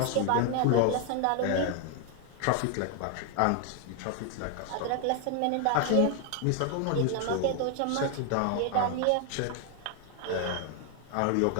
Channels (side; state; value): both; different; correlation 0.00